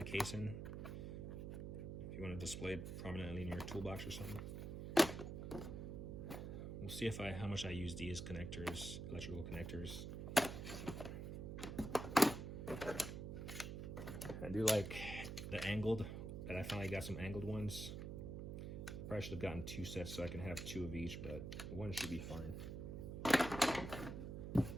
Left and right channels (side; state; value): right; noise; hum, 5 dB below the sound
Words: casing if you want to display it prominently in your toolbox or something. We'll see how much I use these connectors, electrical connectors. I do like the angled, that I finally got some angled ones. Probably should have gotten 2 sets so I can have 2 of each, but one should be fine.